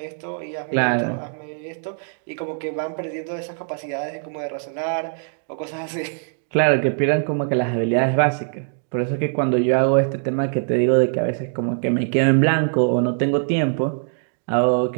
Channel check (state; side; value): silent; left; digital silence